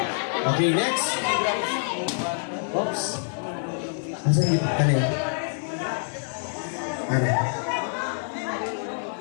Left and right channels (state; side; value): silent; right; 61 dB below the other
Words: Okay, next. Oops. Asa yung ano yun? Ano?